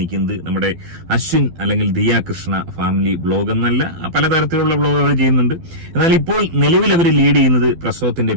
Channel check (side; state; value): left; late; 12 ms